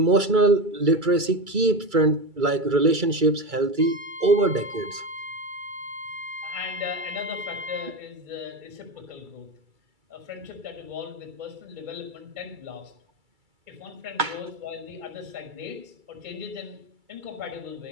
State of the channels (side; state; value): left; late; 2.3 ms